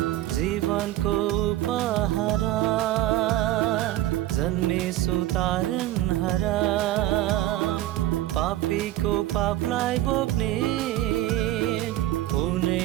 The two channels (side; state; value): left; quieter; 14.6 dB